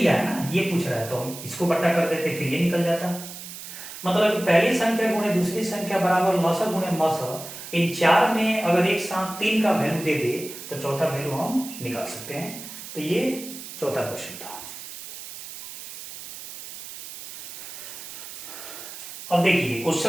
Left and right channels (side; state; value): right; noise; hiss, 12 dB below the sound